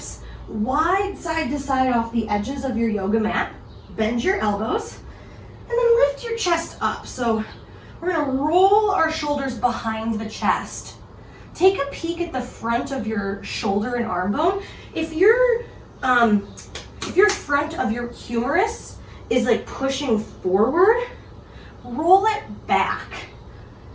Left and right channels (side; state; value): both; identical; correlation 1.00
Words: wide side to side off the edges of your yoga mat. Bend your elbows, and then lift your chest up. So we're gonna roll our shoulders behind the chest. Take a peek at the front of your shoulder and arm bone. If your front of your humerus is like pushing forward, roll it back